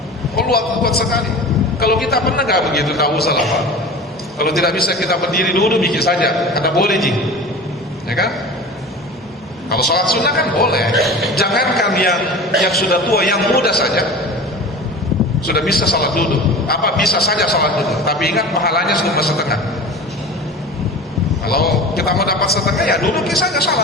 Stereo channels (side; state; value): both; normal; correlation 0.34